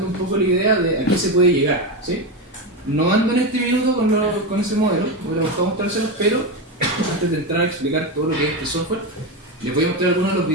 un poco la idea de a qué se puede llegar, ¿sí? No ando en este minuto con ese modelo, voy a buscar mostrárselos, pero antes de entrar a explicar todo lo que es este software, les voy a mostrar algunos de los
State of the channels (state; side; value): normal; both; correlation 0.15